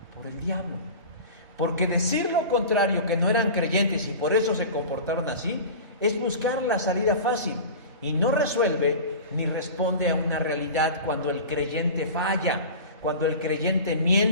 por el diablo. Porque decir lo contrario, que no eran creyentes y por eso se comportaron así, es buscar la salida fácil y no resuelve ni responde a una realidad cuando el creyente falla, cuando el creyente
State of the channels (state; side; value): inverted; both; correlation -0.34